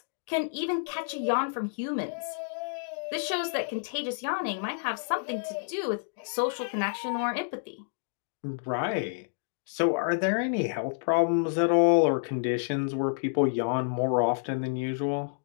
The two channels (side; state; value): right; silent; digital silence